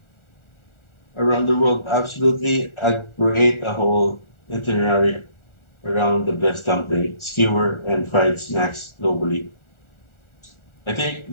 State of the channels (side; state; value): right; late; 1.4 ms